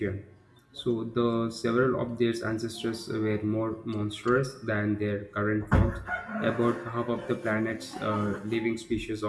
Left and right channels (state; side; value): identical; both; correlation 1.00